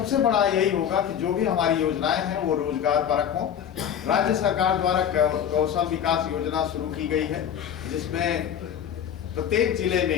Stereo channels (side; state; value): right; quieter; 9.0 dB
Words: बड़ा यही होगा कि जो भी हमारी योजनाएं हैं वो रोजगार परक हों। राज्य सरकार द्वारा कौशल विकास योजना शुरू की गई है, जिसमें प्रत्येक जिले